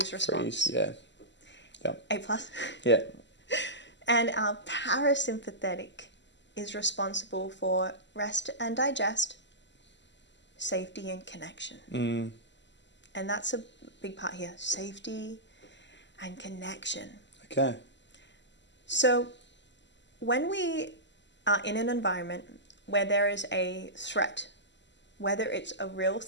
response. Yeah. Yep. A+. Yeah. And our parasympathetic is responsible for rest and digest, safety and connection. And that's a big part here, safety and connection. Okay. So when we are in an environment where there is a threat, whether it's a real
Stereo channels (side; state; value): right; late; 0.53 ms